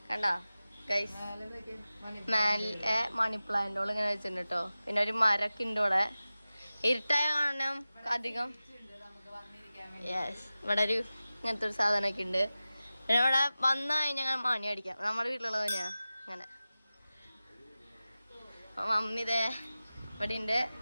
കണ്ടാ ഗൈസ്. മേലെ മണി പ്ലാന്റോൾ ഇങ്ങനെ വെച്ചിട്ടുണ്ട് കേട്ടോ. പിന്നെ ഒരു മരൊക്കെ ഉണ്ട് ഇവിടെ. ഇരുട്ടായ കാണണം അധികം. യെസ്, ഇവിടെ ഒരു ഇങ്ങനത്തെ ഒരു സാധനമൊക്കെ ഉണ്ട്. പിന്നെ ഇവിടെ വന്നു കഴിഞ്ഞാൽ മണി അടിക്കാം. നമ്മുടെ വീട്ടിലുള്ളത് തന്നെയാ അങ്ങനെ. മമ്മി ഇതേ ഇവിടെ ഉണ്ട്.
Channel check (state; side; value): inverted; both; correlation -0.96